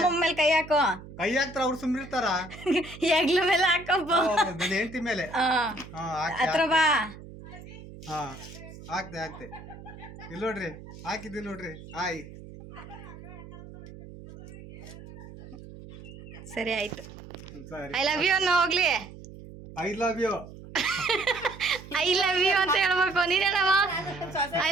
ಮೇಲೆ ಕೈ ಹಾಕೋ. ಕೈ ಹಾಕ್ತಾರ ಅವ್ರು ಸುಮ್ಮನಿರ್ತಾರ. ಹೆಗ್ಲ ಮೇಲೆ ಹಾಕಪ್ಪ. ನನ್ನ ಹೆಂಡತಿ ಮೇಲೆ. ಹತ್ರ ಬಾ. ಹಾಕ್ತೆ ಇಲ್ಲಿ ನೋಡ್ರಿ, ಹಾಕಿದ್ದೀನಿ ನೋಡ್ರಿ. ಹಾಯ್. ಸರಿ ಆಯ್ತು. ಸರಿ. ಐ ಲವ್ ಯು ಅನ್ನೋ ಹೋಗ್ಲಿ. I love you. I love you ಅಂತ ಹೇಳ್ಬೇಕು. ನೀನ್ ಹೇಳವ. ಐ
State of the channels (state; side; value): noise; right; hum, 16 dB below the sound